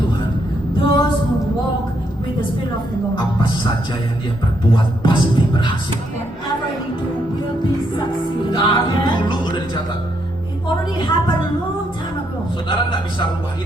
those who walk with the Spirit of the Lord, apa saja yang dia perbuat pasti berhasil. whatever he do will be succeeding. Dari Amen. dulu udah dicatat. It already happened a long time ago. Saudara nggak bisa rubah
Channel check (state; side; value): normal; both; correlation 0.76